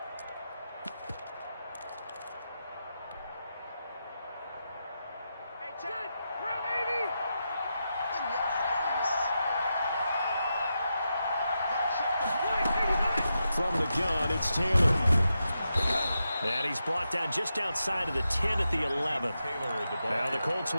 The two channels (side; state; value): both; inverted; correlation -0.87